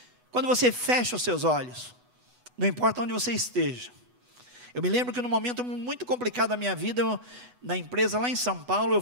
Quando você fecha os seus olhos, não importa onde você esteja. Eu me lembro que num momento muito complicado da minha vida, na empresa lá em São Paulo, eu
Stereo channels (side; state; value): left; late; 8.1 ms